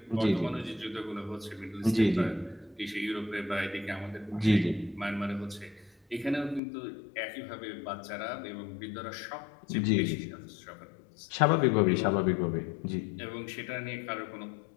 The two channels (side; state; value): right; drops out; at 6.6 s